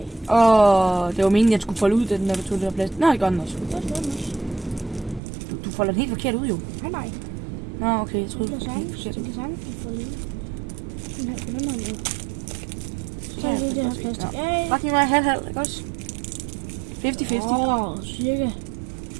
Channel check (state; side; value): drops out; left; at 5.2 s